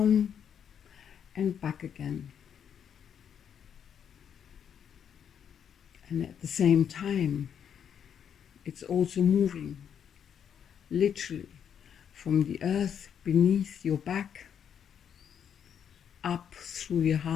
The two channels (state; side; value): quieter; right; 8.3 dB